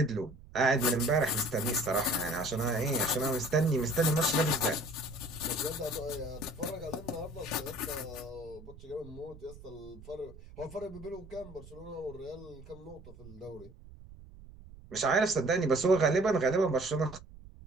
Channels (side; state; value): right; noise; rumble, 19 dB below the sound